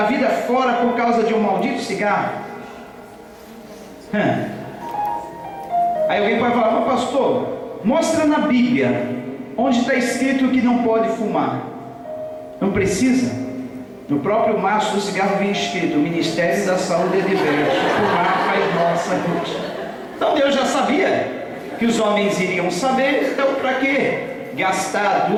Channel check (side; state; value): both; identical; correlation 1.00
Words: vida fora por causa de um maldito cigarro. Aí alguém pode falar: mas pastor, mostra na Bíblia onde está escrito que não pode fumar. Não precisa. No próprio maço do cigarro vem escrito: o Ministério da Saúde é diverso, fumar faz mal à saúde. Então Deus já sabia que os homens iriam saber. Então para que gastar